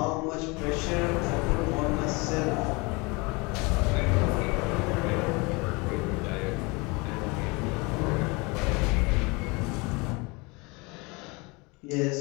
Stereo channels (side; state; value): right; quieter; 27.1 dB